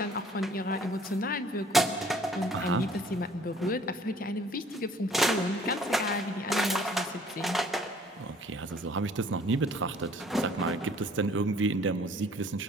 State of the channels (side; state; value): both; normal; correlation 0.55